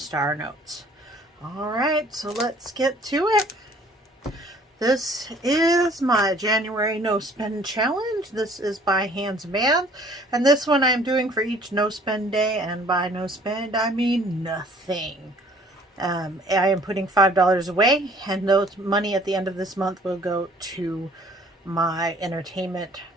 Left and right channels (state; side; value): normal; both; correlation 0.55